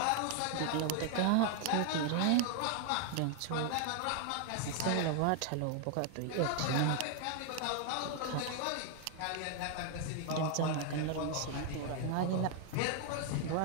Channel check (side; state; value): both; different; correlation 0.00